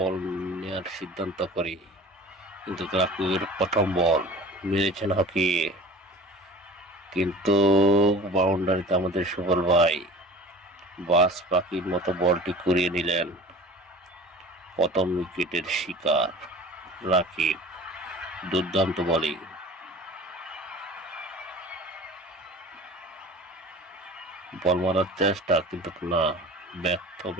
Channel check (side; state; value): both; normal; correlation 0.41